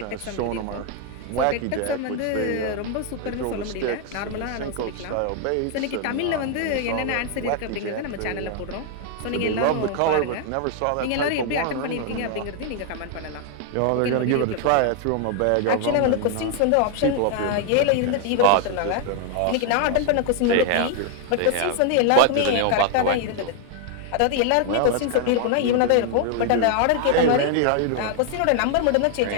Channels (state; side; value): different; both; correlation 0.00